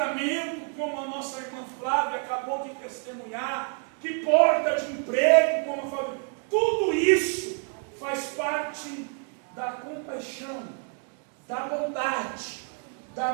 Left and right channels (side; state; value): left; quieter; 39.9 dB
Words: como a nossa irmã Flávia acabou de testemunhar, que porta de emprego, como eu falei, tudo isso faz parte da compaixão, da bondade, da